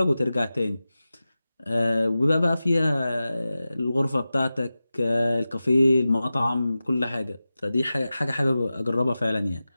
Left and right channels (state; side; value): inverted; both; correlation -0.95